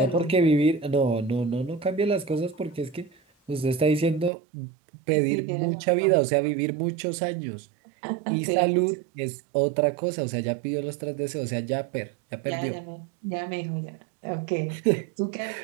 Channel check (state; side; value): drops out; left; at 4.3 s